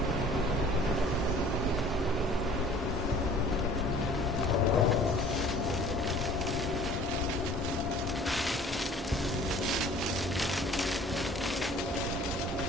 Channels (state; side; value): normal; both; correlation 0.50